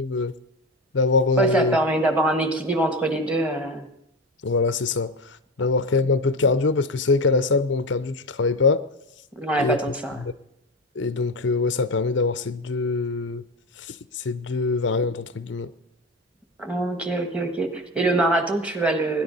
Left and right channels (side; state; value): both; normal; correlation 0.22